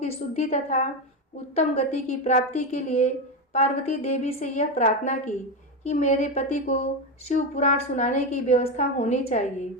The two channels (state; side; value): normal; both; correlation 0.13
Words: शुद्धि तथा उत्तम गति की प्राप्ति के लिए पार्वती देवी से यह प्रार्थना की कि मेरे पति को शिव पुराण सुनाने की व्यवस्था होनी